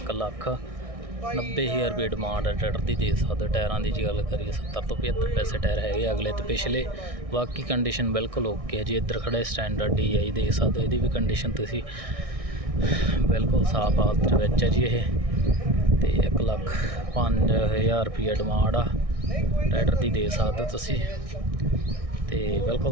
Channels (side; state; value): left; late; 1.6 ms